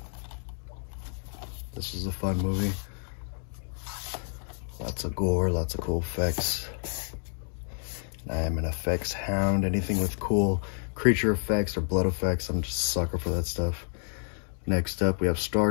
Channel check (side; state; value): right; silent; 58 dB below the other